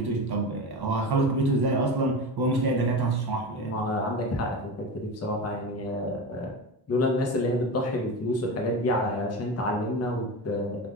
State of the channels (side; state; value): both; normal; correlation 0.25